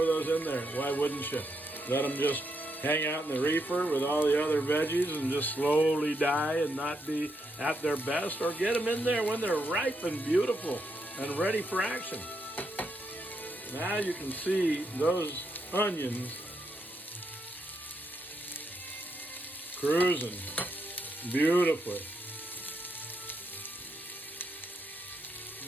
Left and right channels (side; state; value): both; normal; correlation 0.80